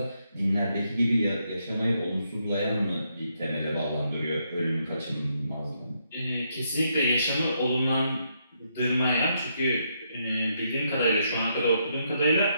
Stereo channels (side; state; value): both; inverted; correlation -0.76